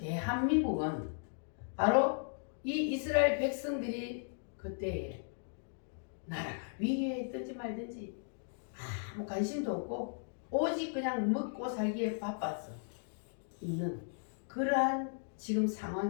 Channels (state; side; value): silent; right; digital silence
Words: 바로 이 이스라엘 백성들이 그때에 나라가 위기에 있든지 말든지 아무 관심도 없고 오직 그냥 먹고 살기에 바빴어 있는 그러한 지금